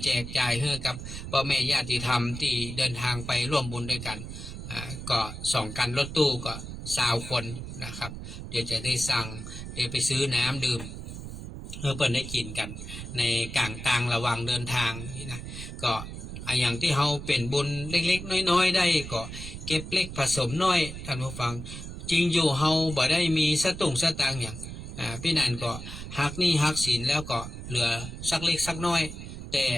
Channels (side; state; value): right; noise; rumble, 9 dB below the sound